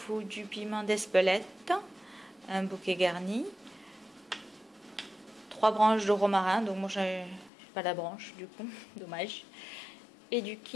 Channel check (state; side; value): drops out; right; at 7.5 s